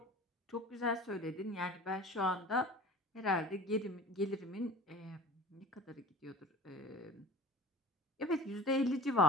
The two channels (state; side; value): normal; both; correlation 0.41